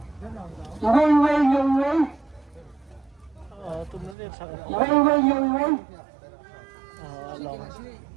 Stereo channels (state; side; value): drops out; left; at 4.2 s